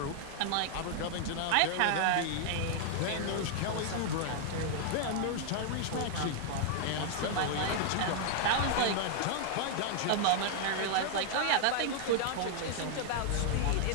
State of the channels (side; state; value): both; different; correlation 0.00